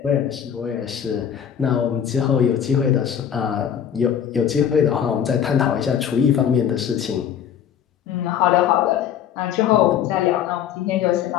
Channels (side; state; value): right; quieter; 8.9 dB